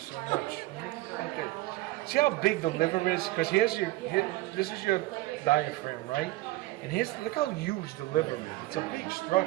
much. Okay. See how big the liver is? Because this is your diaphragm, right? And look how huge the liver is. It's a big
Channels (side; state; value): left; quieter; 18.6 dB